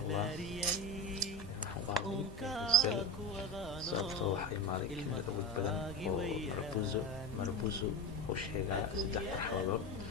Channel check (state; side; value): normal; both; correlation 0.21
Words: الله. sababtoo waxay imaaday kelmad awood badan oo marbuzo oo sheegaya 3 marxaladood.